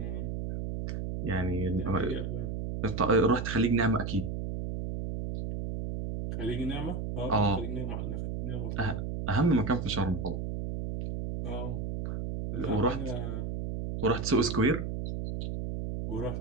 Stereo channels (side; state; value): right; noise; hum, 3 dB below the sound